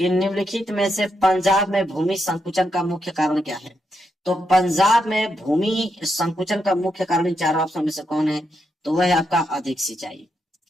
निम्नलिखित में से पंजाब में भूमि संकुचन का मुख्य कारण क्या है। तो पंजाब में भूमि संकुचन का मुख्य कारण इन चारों ऑप्शन में से कौन है, तो वह है आपका अधिक सिंचाई।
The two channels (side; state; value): both; normal; correlation 0.82